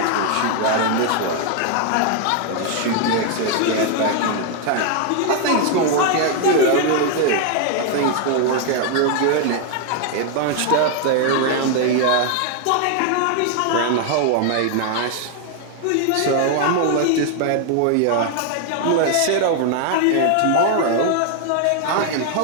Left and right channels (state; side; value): different; both; correlation 0.00